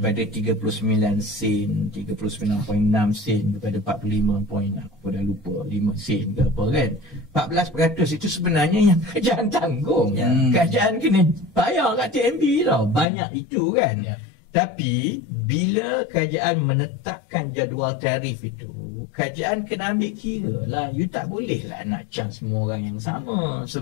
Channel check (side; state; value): right; drops out; at 13.1 s